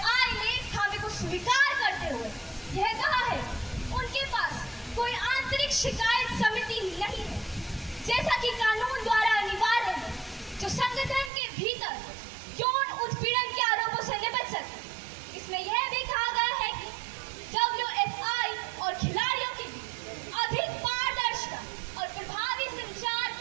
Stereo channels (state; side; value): drops out; left; at 11.3 s